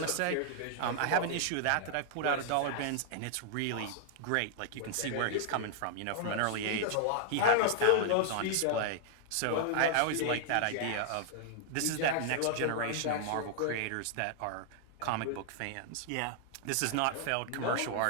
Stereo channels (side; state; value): both; different; correlation -0.01